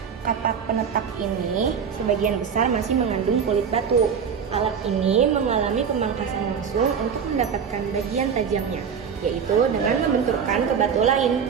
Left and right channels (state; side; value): quieter; left; 6.9 dB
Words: Kapak penetak ini sebagian besar masih mengandung kulit batu. Alat ini mengalami pemangkasan langsung untuk mendapatkan bagian tajamnya, yaitu dengan membenturkan ke batu